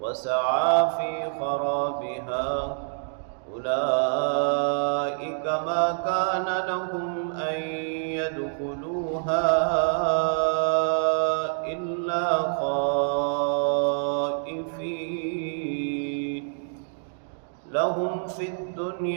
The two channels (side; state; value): left; silent; digital silence